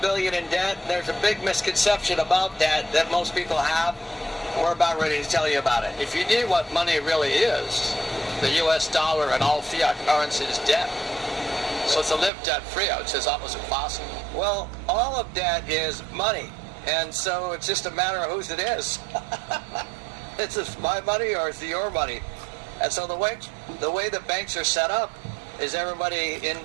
in debt. There's a big misconception about debt that most people have. We're about ready to tell you about it. If you knew what money really is, the U.S. dollar and all fiat currency is debt. So to live debt-free, I would say, is almost impossible. Well, all of debt is money, and so it's just a matter of whose it is. It's just my money or it's your money. And so the way the banks are set up is everybody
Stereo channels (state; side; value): drops out; left; at 12.3 s